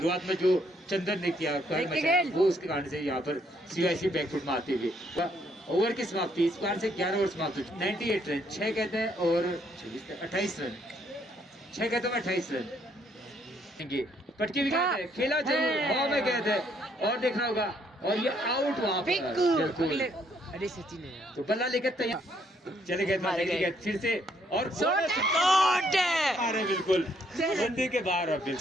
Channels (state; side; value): normal; both; correlation 0.69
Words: में जो चंदन ने किया वो उसके कारण से यहाँ पर CIC बैकफुट में आते हुए ओवर की समाप्ति इस बार से 11 ओवर समाप्त हो चुकी। 98 रन 6 कहते हैं और 28 रन 6 कहते हैं 28 रन। पटकी भी कहते हैं, खेला जरूर, हवा में गए थे, और देखना होगा, और ये आउट वहां पर बिल्कुल। अरे सचिन है तो बल्ला लेकर तैयार चले गए, फिर से और बिल्कुल बंदी के बाहर। अब